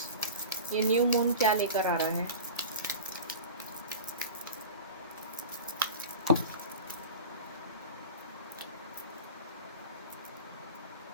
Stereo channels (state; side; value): inverted; both; correlation -0.33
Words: ये न्यू मून क्या लेकर आ रहा है?